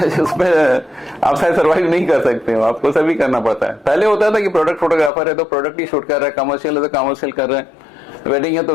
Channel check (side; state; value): right; drops out; at 5.1 s